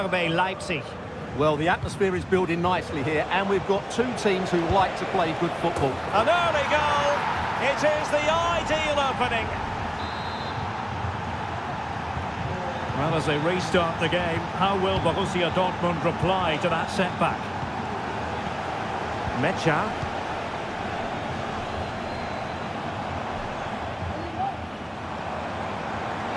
Leipzig. Well, the atmosphere is building nicely here, and we've got two teams who like to play good football. An early goal. It is the ideal opening. Well, as they restart the game, how will Borussia Dortmund reply to that setback? Mecha.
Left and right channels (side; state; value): both; identical; correlation 1.00